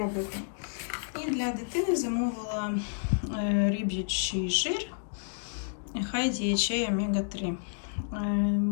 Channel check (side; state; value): right; silent; digital silence